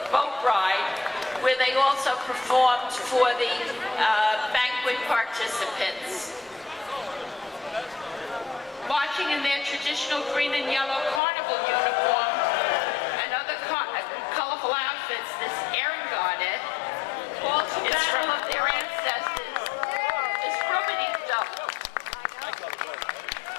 boat ride, where they also performed for the banquet participants. Marching in their traditional green and yellow carnival uniform and other colorful outfits, this Ehrengarde is from of their ancestors, is Rubbity Double,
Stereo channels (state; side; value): drops out; right; at 11.2 s